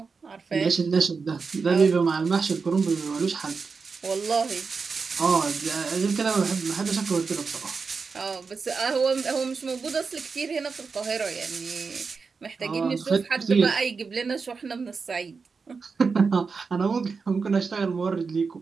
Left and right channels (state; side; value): quieter; left; 4.9 dB